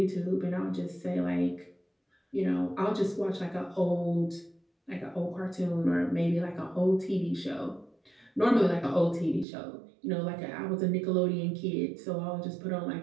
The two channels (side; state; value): left; drops out; at 9.5 s